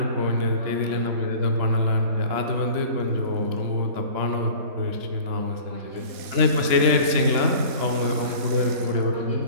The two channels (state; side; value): late; left; 3.0 ms